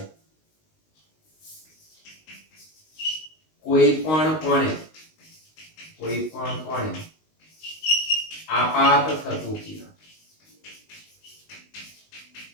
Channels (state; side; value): late; right; 19 ms